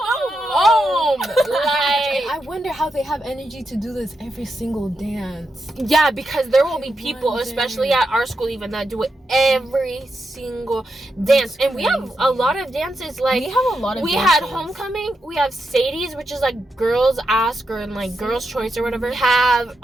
I wonder how they have energy to do this every single dance. Yeah, because there will be people, especially at our school even, that do it every single dance. And we have a lot of dances. Like, we have a lot of dances. Had homecoming, we have Sadie's, which is like girls ask, or like girls choice or whatever. We have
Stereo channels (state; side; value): normal; both; correlation 0.85